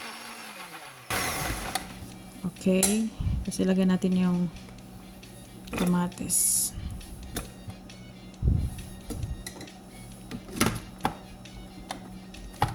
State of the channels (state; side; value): identical; both; correlation 1.00